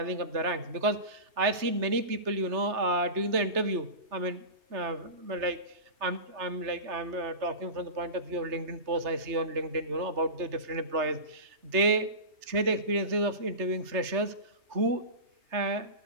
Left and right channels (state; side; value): late; left; 3.3 ms